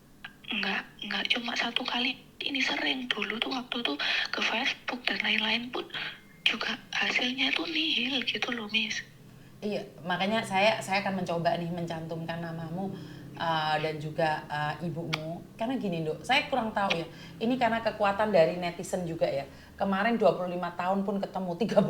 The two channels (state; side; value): identical; both; correlation 1.00